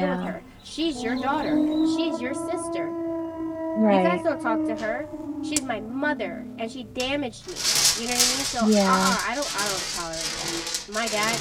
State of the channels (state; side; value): identical; both; correlation 1.00